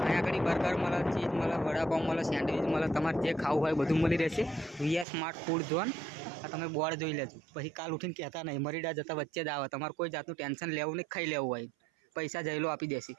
અહીંયા આગળ બર્ગર મળે, ચીઝ મળે, વડાપાઉં મળે, સેન્ડવિચ મળે. તમારે જે ખાવું હોય બધું મળી રહેશે. VR smart food zone. આ તમે બોર્ડ જોઈ લેજો, પછી કાલ ઉઠીને કહેતા નહીં. મરીડા જતા વચ્ચે જ આવે. તમારે કોઈ જાતનું ટેન્શન લેવું નહીં, ખાઈ લેવું હોય. પૈસા જઈલો આપી દેશે.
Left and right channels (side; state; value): left; drops out; at 5.1 s